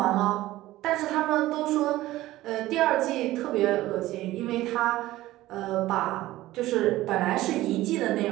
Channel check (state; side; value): quieter; left; 16.4 dB